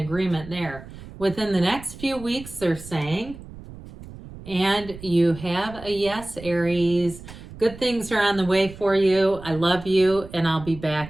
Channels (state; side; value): noise; right; rumble, 15 dB below the sound